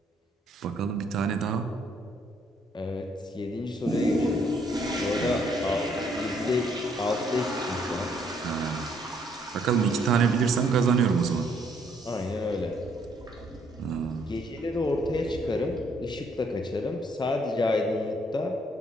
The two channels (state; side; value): normal; both; correlation 0.68